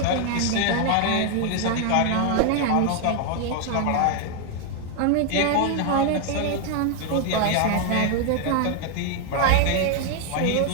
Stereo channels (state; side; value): different; both; correlation 0.01